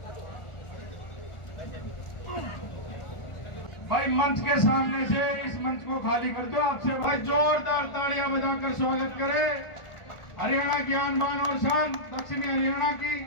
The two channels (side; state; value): right; late; 1.4 ms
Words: भाई, मंच के सामने से इस मंच को खाली कर दो। आपसे भाई जोरदार तालियां बजाकर स्वागत करें हरियाणा की आन बान और शान दक्षिणी हरियाणा की